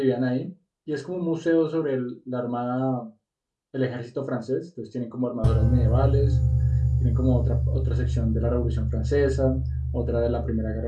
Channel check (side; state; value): both; identical; correlation 1.00